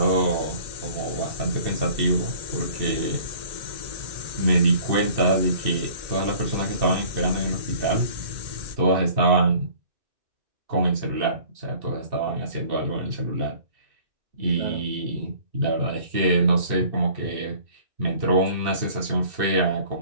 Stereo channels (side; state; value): left; late; 2.6 ms